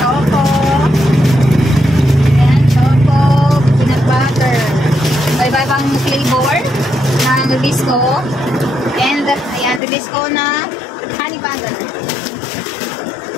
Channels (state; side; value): drops out; right; at 9.8 s